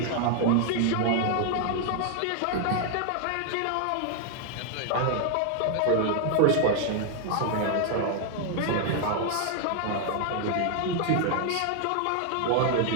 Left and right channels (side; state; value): both; different; correlation 0.00